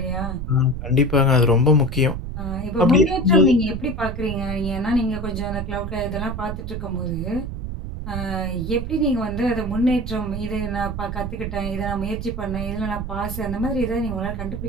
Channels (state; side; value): noise; right; rumble, 5 dB below the sound